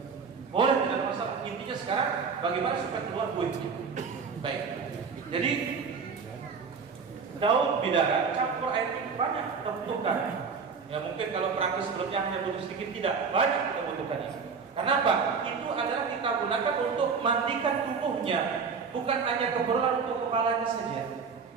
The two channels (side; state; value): left; quieter; 5.5 dB